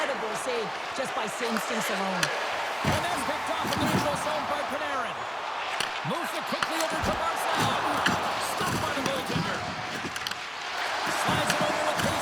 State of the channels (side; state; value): both; identical; correlation 1.00